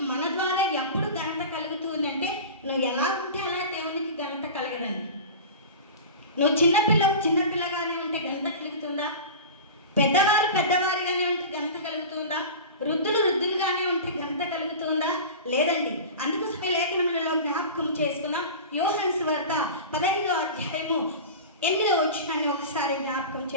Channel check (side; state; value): both; inverted; correlation -0.32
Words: మన ద్వారా ఎప్పుడు ఘనత కలుగుతుందంటే నువ్వు ఎలా ఉంటే అలా దేవునికి ఘనత కలగదండి. నువ్వు చిన్నపిల్లగానే ఉంటే ఘనత కలుగుతుందా? పెద్దవారిగానే ఉంటే ఘనత కలుగుతుందా? వృద్ధులుగానే ఉంటే ఘనత కలుగుతుందా? లేదండి. అందుకోసమే లేఖనములలో జ్ఞాపకం చేసుకుందాం. యోహాను సువార్త 15వ అధ్యాయము 8వ వచనాన్ని ఒకసారి జ్ఞాపకం